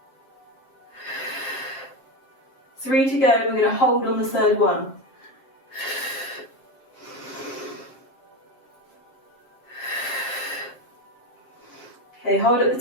3 to go, we're going to hold on the third one. Okay, hold at the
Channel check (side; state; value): right; late; 7.5 ms